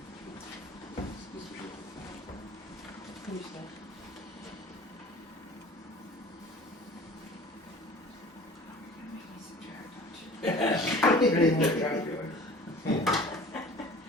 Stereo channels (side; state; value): both; normal; correlation 0.45